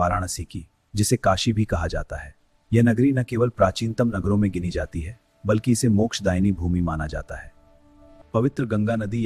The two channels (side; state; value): both; identical; correlation 1.00